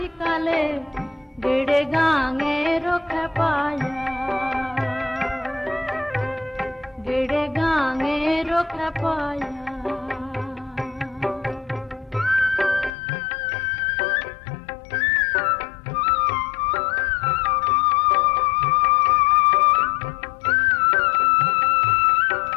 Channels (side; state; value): right; drops out; at 12.9 s